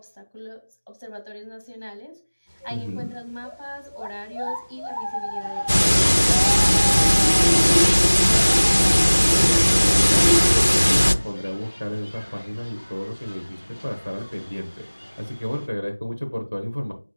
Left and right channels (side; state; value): both; inverted; correlation -1.00